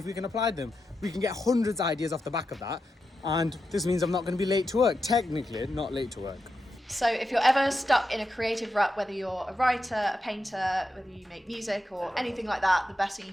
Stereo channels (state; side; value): normal; both; correlation 0.88